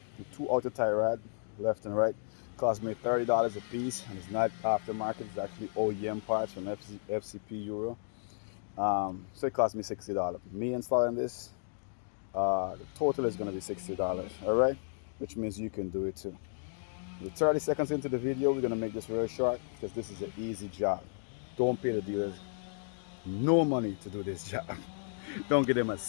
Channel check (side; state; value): right; silent; digital silence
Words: outer tie rod, left and right, cost me $30 a piece, and it's not aftermarket. It's actually OEM parts from FCP Euro. So it cost me $60. Me installing this, the total is going to be $60. All right, which means you can do it too. We're 30 seconds into the video. We're going to make this real short because this is an easy job. Don't pay the dealers no money to do this job. Don't give them a